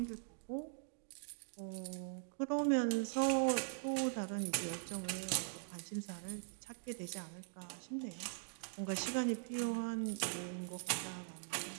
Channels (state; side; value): silent; left; digital silence